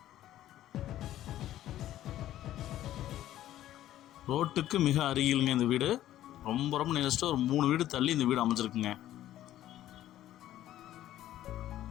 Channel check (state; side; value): quieter; right; 13.1 dB